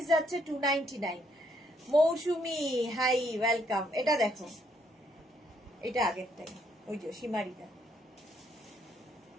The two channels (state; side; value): normal; both; correlation 0.71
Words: যাচ্ছে 299। মৌসুমি হাই, ওয়েলকাম। এটা দেখো, এটা আগেরটাই, ওই যে শিমারিটা।